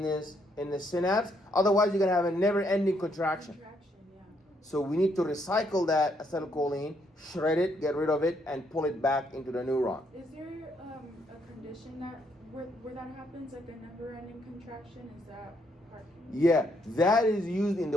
the synapse? Otherwise, you're going to have a never-ending contraction. Yeah. So we need to recycle that acetylcholine, shred it, get rid of it, and pull it back into the neuron. Is there a condition that where that happens, like a never-ending contraction? Is that Parkinson's? Yeah, that is used in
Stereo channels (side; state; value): both; normal; correlation 0.73